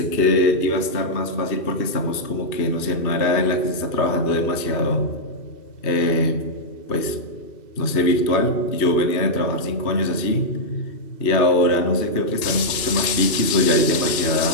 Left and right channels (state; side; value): late; right; 2.7 ms